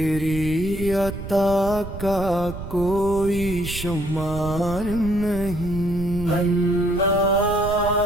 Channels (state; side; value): noise; right; rumble, 10 dB below the sound